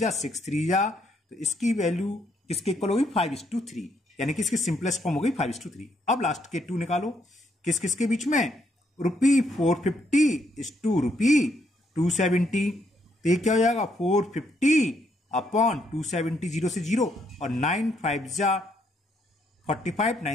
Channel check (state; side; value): normal; both; correlation 0.73